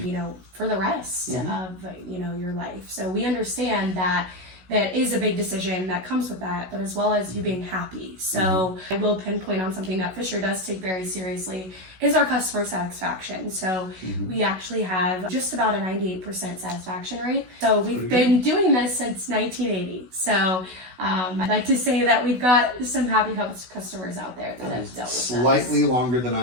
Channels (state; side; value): late; left; 16 ms